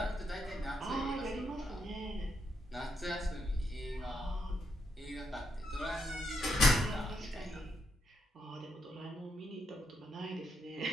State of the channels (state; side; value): normal; both; correlation 0.79